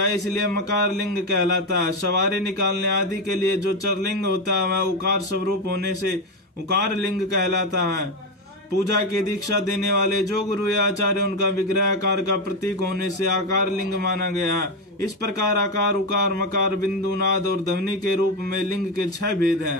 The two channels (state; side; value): normal; both; correlation 0.11